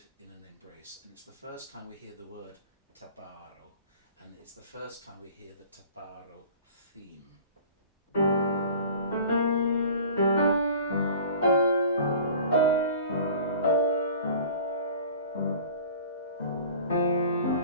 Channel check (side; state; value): both; inverted; correlation -0.44